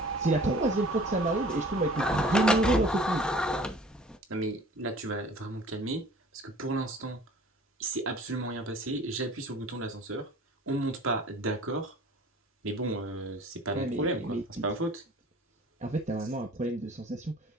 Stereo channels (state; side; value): normal; both; correlation 0.47